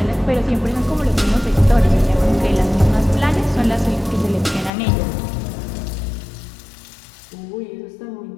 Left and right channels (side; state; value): right; drops out; at 4.7 s